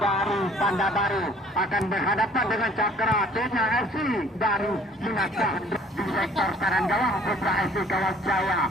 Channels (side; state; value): both; normal; correlation 0.55